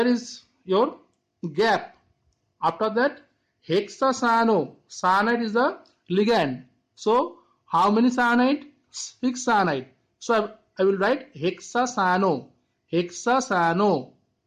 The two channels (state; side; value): identical; both; correlation 1.00